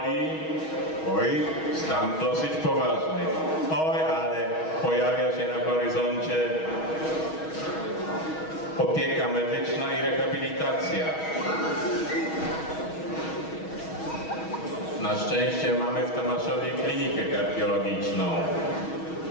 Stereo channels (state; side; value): late; right; 6.3 ms